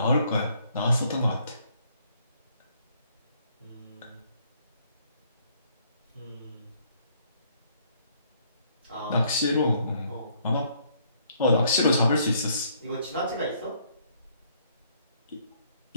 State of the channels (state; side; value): inverted; both; correlation -0.66